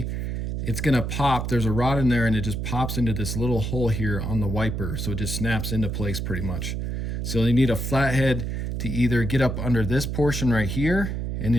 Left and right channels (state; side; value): noise; right; hum, 3 dB below the sound